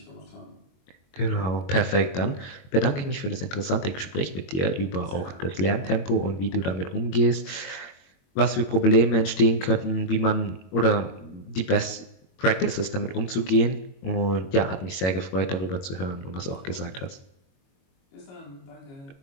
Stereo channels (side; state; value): right; late; 22 ms